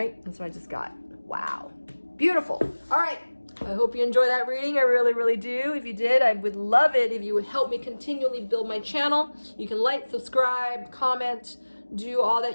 that's what I just got. Wow, beautiful. All right, I hope you enjoy that reading. I really, really do. If you did, I would love it if you would help me continually build my channel. You can like, subscribe, comment, do all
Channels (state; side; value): inverted; both; correlation -1.00